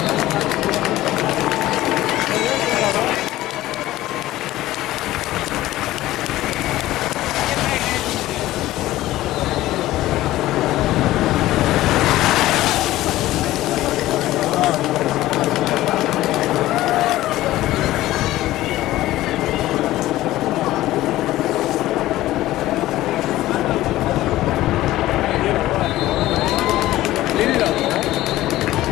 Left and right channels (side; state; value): right; quieter; 15.8 dB